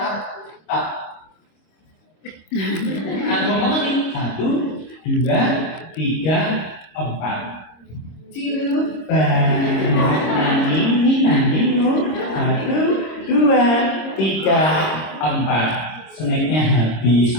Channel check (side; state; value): right; late; 26 ms